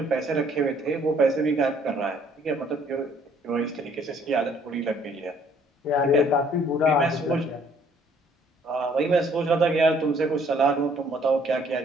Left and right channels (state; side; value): normal; both; correlation 0.61